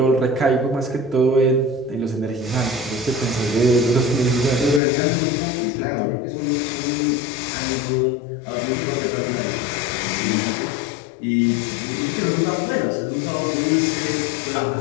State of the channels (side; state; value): right; drops out; at 4.8 s